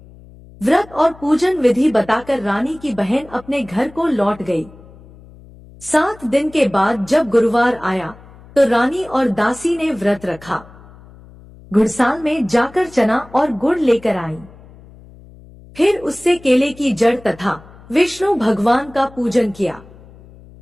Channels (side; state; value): left; noise; hum, 22 dB below the sound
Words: व्रत और पूजन विधि बताकर रानी की बहन अपने घर को लौट गई। 7 दिन के बाद जब गुरुवार आया तो रानी और दासी ने व्रत रखा। घुड़साल में जाकर चना और गुड़ लेकर आई। फिर उससे केले की जड़ तथा विष्णु भगवान का पूजन किया।